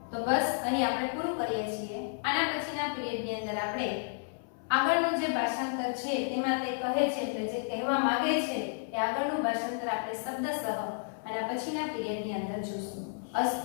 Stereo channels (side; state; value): right; silent; 57 dB below the other